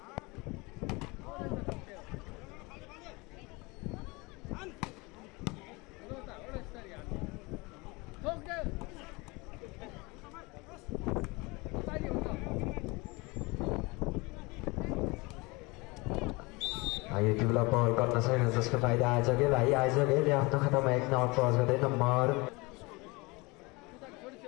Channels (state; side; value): quieter; right; 25.5 dB